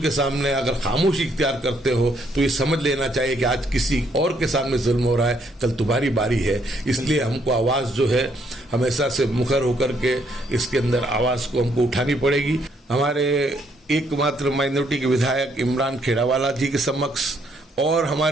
के सामने अगर खामोशी इख्तियार करते हो तो ये समझ लेना चाहिए कि आज किसी और के सामने जुल्म हो रहा है, कल तुम्हारी बारी है। इसलिए हमको आवाज़ जो है हमेशा से मुखर होकर के इसके अंदर आवाज़ को हमको उठानी पड़ेगी। हमारे एकमात्र माइनॉरिटी के विधायक इमरान खेड़ावाला जी के समक्ष और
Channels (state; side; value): normal; both; correlation 0.70